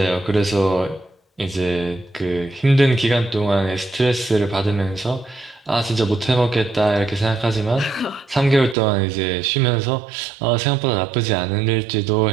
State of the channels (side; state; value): left; drops out; at 8.8 s